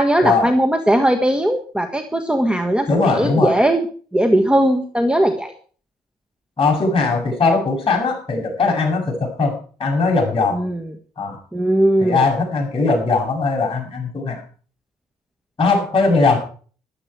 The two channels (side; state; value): both; normal; correlation 0.76